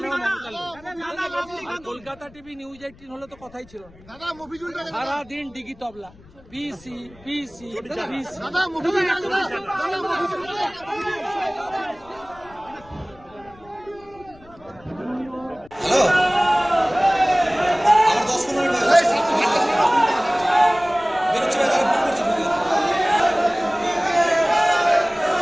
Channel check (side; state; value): left; noise; rumble, 25 dB below the sound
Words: কলকাতা টিভি নিউজ 18 হলে তো কথাই ছিল না, সারাদিন ডিগি তবলা, পিসি পিসি পিসি।